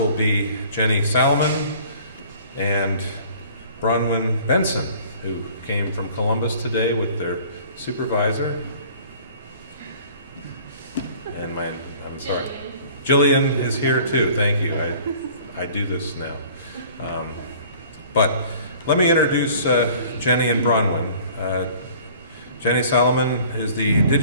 be Jenni Salamon and Bronwyn Benson, who came from Columbus today with their supervisor. And I'm sorry, Jillian is here too. Thank you. I do this now. But let me introduce Jenni and Bronwyn. Jenni Salamon is the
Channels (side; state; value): both; inverted; correlation -0.50